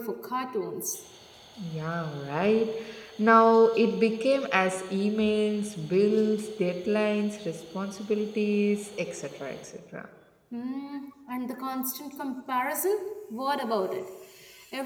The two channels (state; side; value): identical; both; correlation 1.00